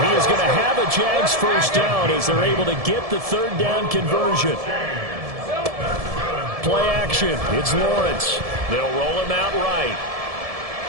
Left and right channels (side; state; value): left; late; 1.7 ms